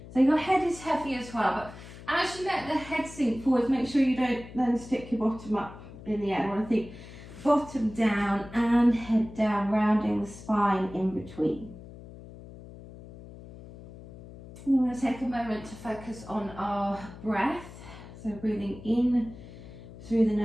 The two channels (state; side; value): noise; left; hum, 16 dB below the sound